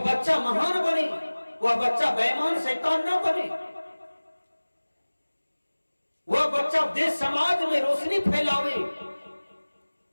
बच्चा महान बने, वह बच्चा बेईमान शैतान न बने, वह बच्चा देश समाज में रोशनी फैलावे,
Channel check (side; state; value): both; inverted; correlation -1.00